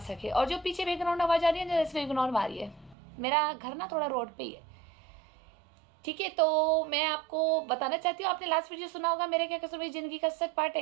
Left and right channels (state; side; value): drops out; left; at 3.0 s